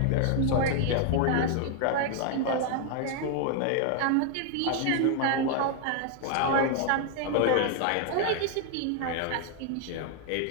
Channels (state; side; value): different; both; correlation 0.00